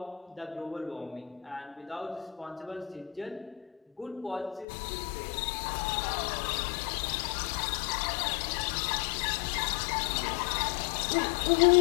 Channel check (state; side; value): drops out; right; at 4.7 s